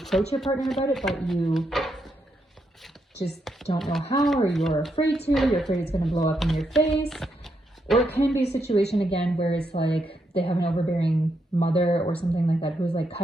your partner about it, but you just don't know how, or you're afraid it's going to blow up in your face. Or it can be a situation, again, where it's like they have an overbearing mother or something like that who's like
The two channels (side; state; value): both; normal; correlation 0.80